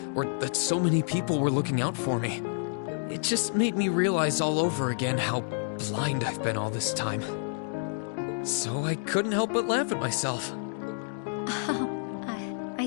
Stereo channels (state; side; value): silent; right; digital silence